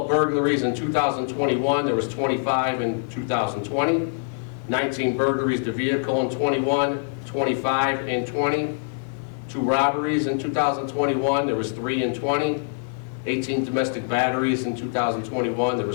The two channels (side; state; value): right; silent; 62 dB below the other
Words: burglaries in 2021. There was 25 in 2020. 19 burglaries to vehicle in 21. 25 in 20. 2 robberies in 2021. There was 3 in 20. 18 domestic batteries in 2021. There